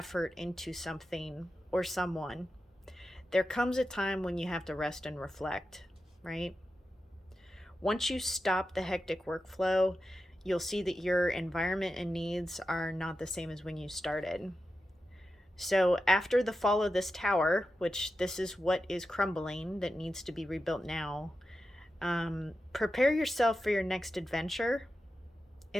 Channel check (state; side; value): normal; both; correlation 0.91